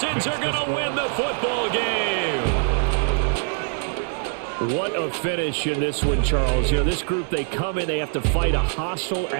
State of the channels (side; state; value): left; silent; 61 dB below the other